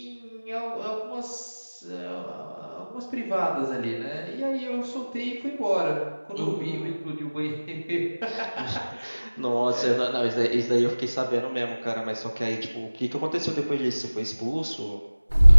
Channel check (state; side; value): inverted; both; correlation -1.00